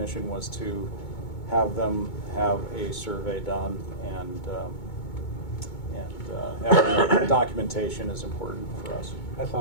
was to have them have a survey done, and having documentation is important for us. I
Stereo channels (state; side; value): late; right; 2.2 ms